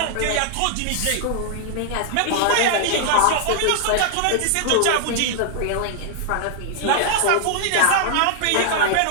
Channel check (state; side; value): different; both; correlation 0.00